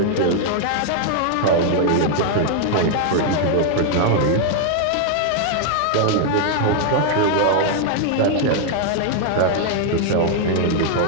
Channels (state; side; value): different; both; correlation 0.00